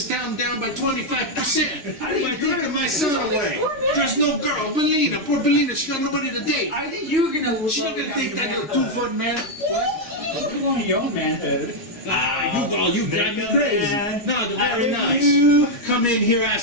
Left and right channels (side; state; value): right; late; 3.0 ms